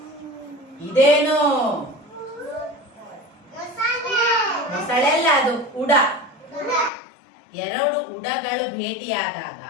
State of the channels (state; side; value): drops out; right; at 6.9 s